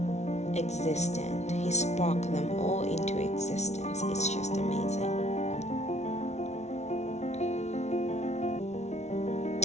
existence. He spoke them all into existence. It's just amazing.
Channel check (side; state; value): right; late; 0.32 ms